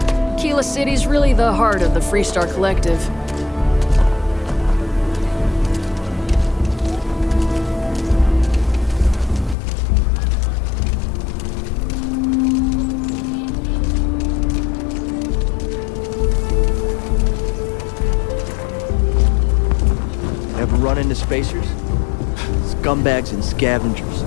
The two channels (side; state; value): right; drops out; at 9.6 s